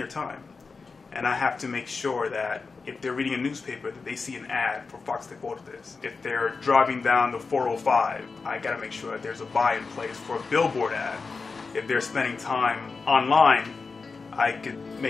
time? And I have to make sure that if they're reading a newspaper, that they see an ad for Fox Deportes. If they're driving down the 405, I got to make sure that there's a buy in place for a billboard ad. If they're spending time online, I could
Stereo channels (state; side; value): quieter; right; 4.5 dB